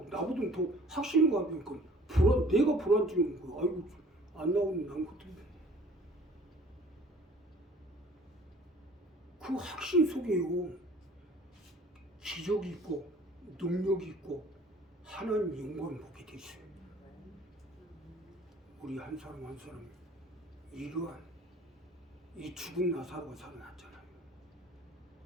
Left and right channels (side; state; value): both; normal; correlation 0.51